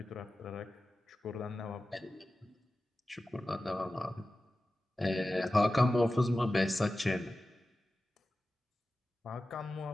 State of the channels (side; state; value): both; normal; correlation 0.95